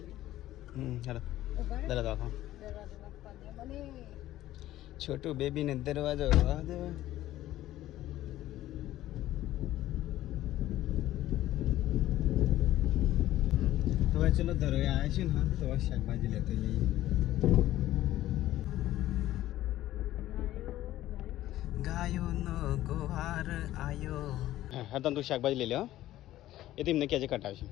હેલો દરવાજો છોટું બેબીને દરવાજો તો ચલો ધરોઈ આવ્યા છે ને. હા તો શાકભાજી લેતો જઈએ. ગાયોનો ગોહાર આયો. હા તો તું શાકભાજી લઈ લે. એ તો એમને ક્યાં કટાવશે.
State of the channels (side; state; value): right; quieter; 14.4 dB